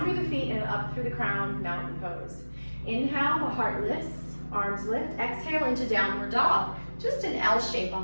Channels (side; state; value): both; inverted; correlation -1.00